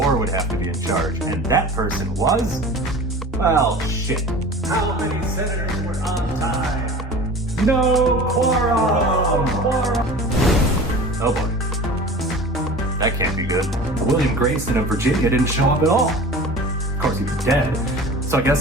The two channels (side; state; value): both; normal; correlation 0.38